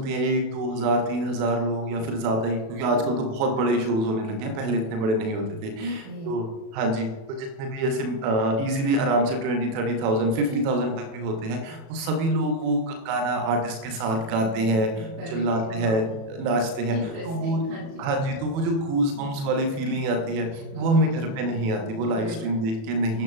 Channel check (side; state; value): left; late; 36 ms